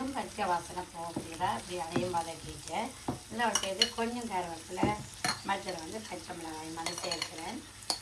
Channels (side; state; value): both; identical; correlation 1.00